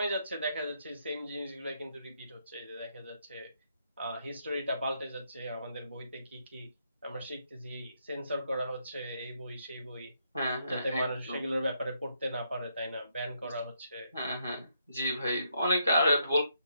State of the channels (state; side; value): inverted; both; correlation -0.76